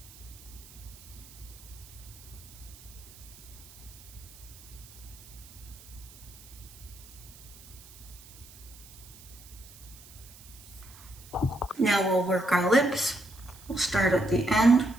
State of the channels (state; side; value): noise; right; hiss, 19 dB below the sound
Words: Now we'll work our lips. We'll start at the end.